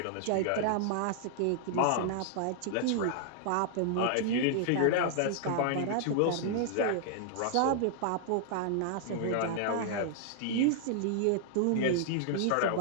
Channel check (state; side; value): different; both; correlation -0.01